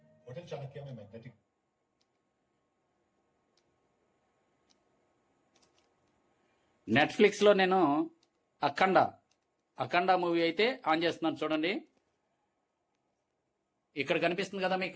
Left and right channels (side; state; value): both; identical; correlation 1.00